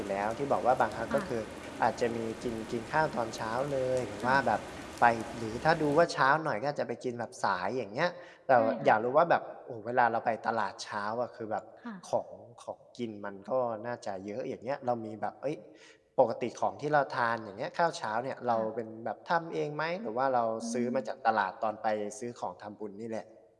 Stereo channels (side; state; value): both; identical; correlation 1.00